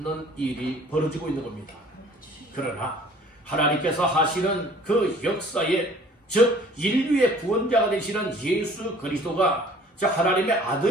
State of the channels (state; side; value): normal; both; correlation 0.51